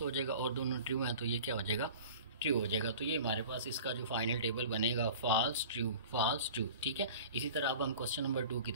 हो जाएगा और दोनों ट्रू हैं तो ये क्या हो जाएगा, ट्रू हो जाएगा। तो ये हमारे पास इसका जो फाइनल टेबल बनेगा, फॉल्स ट्रू फॉल्स ट्रू, ठीक है। इसी तरह अब हम क्वेश्चन नंबर 2 की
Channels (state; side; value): inverted; both; correlation -0.41